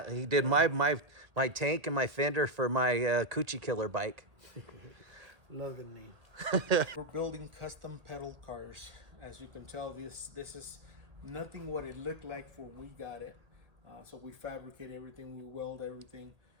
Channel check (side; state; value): left; late; 1.8 ms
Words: He did my tank and my fender for my �ㄐ𝐞𝐭'𝐬 killer bike. Love the name. We're building custom pedal cars. As you can tell, this is nothing what it looked like when we got it. So we fabricate everything, we weld everything,